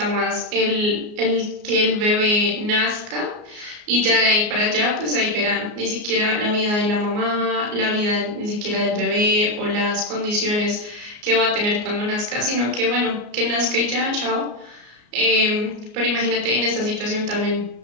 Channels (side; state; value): left; late; 33 ms